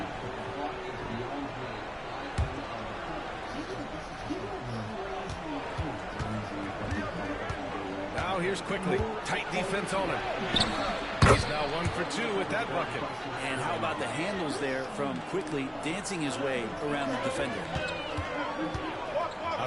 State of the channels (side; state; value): both; identical; correlation 1.00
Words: Now here's Quickly. Tight defense on him. He's now 1 for 2 with that bucket. And how about the handles there from Quickly dancing his way around the defender.